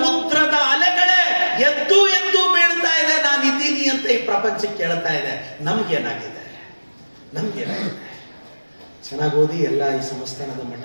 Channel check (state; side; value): inverted; both; correlation -1.00